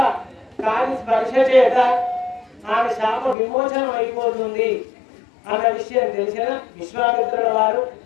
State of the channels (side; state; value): right; drops out; at 3.4 s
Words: కాని స్పర్శ చేత ఆమె శాప విమోచనం అయిపోతుంది అన్న విషయం తెలిసిన విశ్వామిత్రుల వారు